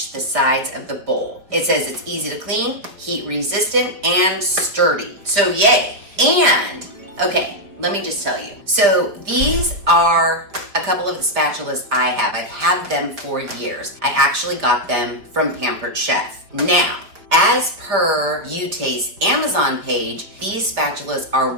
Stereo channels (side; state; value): left; late; 4.8 ms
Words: the sides of the bowl. It says it's easy to clean, heat resistant, and sturdy. So yay. And, okay, let me just tell you. So these are a couple of the spatulas I have. I've had them for years. I actually got them from Pampered Chef. Now, as per You Taste Amazon page, these spatulas are